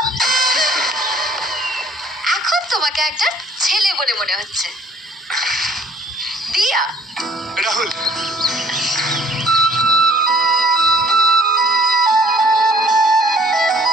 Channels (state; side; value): normal; both; correlation 0.56